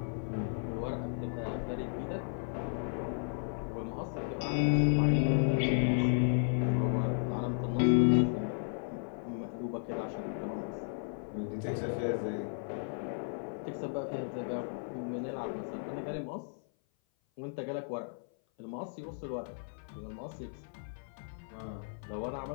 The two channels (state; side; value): silent; right; 55 dB below the other